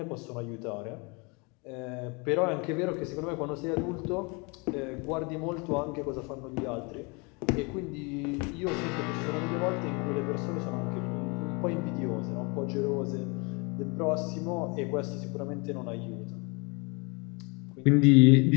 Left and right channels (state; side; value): quieter; right; 30.1 dB